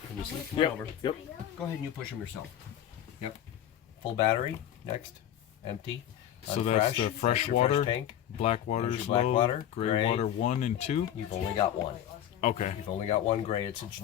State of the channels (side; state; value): right; quieter; 10.9 dB